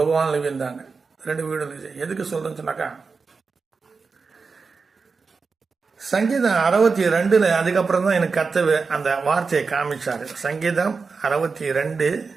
விழுந்தாங்க. 2 வீடு இருந்துச்சு. எதுக்கு சொல்றேன்னு சொன்னாக்கா, சங்கீதம் 62 அதுக்கப்புறம் தான் எனக்கு கர்த்தர் அந்த வார்த்தையை காமிச்சாரு. சங்கீதம் 62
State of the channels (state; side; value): quieter; left; 4.7 dB